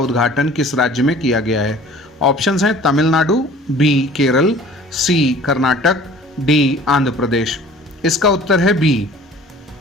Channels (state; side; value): normal; both; correlation 0.48